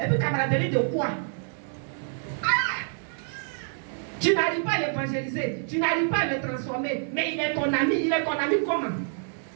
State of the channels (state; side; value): silent; left; digital silence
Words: puis, camaraderie de quoi? Tu n'arrives pas à l'évangéliser. Tu n'arrives pas à le transformer. Mais il est ton ami. Il est ton ami comment?